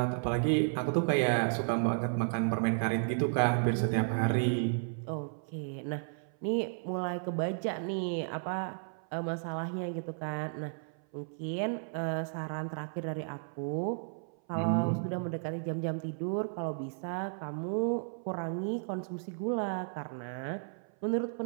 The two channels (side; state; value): left; silent; 55 dB below the other